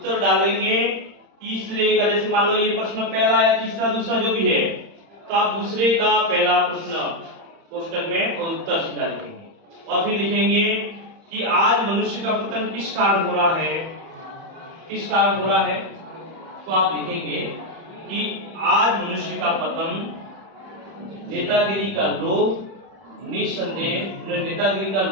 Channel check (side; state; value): left; late; 31 ms